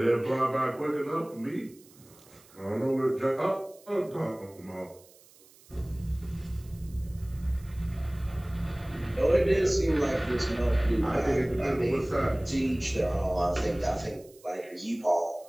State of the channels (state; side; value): noise; right; hiss, 26 dB below the sound